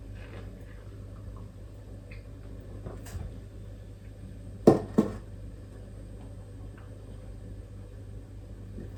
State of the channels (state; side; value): identical; both; correlation 1.00